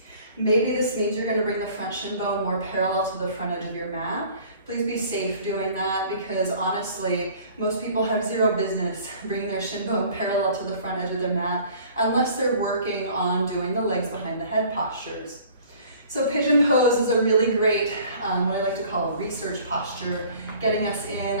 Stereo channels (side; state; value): both; inverted; correlation -0.51